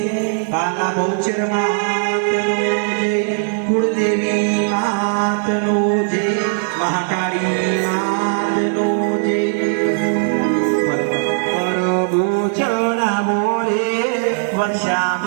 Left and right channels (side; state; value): left; silent; digital silence